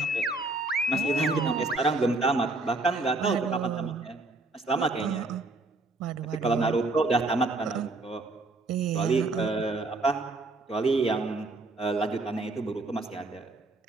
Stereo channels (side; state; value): left; quieter; 3.1 dB